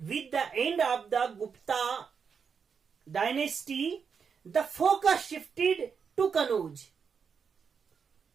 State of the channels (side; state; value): left; quieter; 6.2 dB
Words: the end of the Gupta dynasty, the focus shifted to Kanauj.